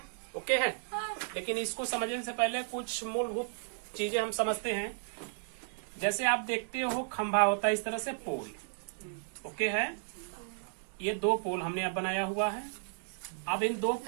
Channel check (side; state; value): left; silent; digital silence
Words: ओके है, लेकिन इसको समझने से पहले कुछ मूलभूत चीजें हम समझते हैं। जैसे आप देखते हो खंभा होता है इस तरह से पोल। ओके है, ये 2 पोल हमने अब बनाया हुआ है। अब इन 2